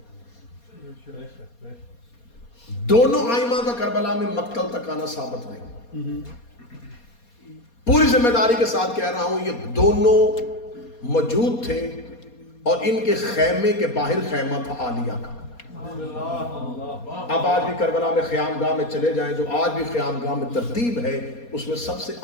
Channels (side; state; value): right; late; 4.2 ms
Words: دونوں ائمہ کا کربلا میں مقتل تک آنا ثابت نہیں۔ پوری ذمہ داری کے ساتھ کہہ رہا ہوں، یہ دونوں موجود تھے اور ان کے خیمے کے باہر خیمہ تھا عالیہ کا۔ اب آج بھی کربلا میں خیام گاہ میں چلے جائیں، جو آج بھی خیام گاہ میں ترتیب ہے، اس میں سب سے